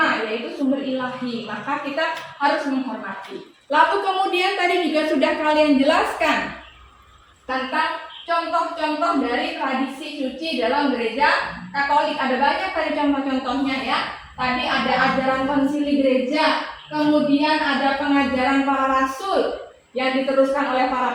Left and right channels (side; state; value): both; identical; correlation 1.00